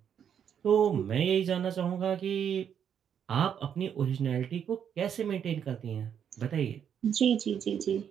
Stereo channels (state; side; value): quieter; left; 8.4 dB